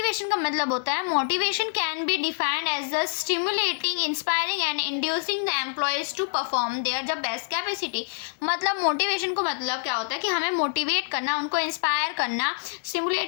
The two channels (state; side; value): silent; right; digital silence